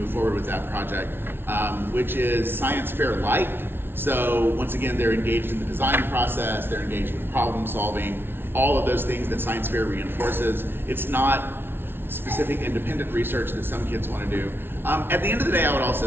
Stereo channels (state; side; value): late; left; 0.11 ms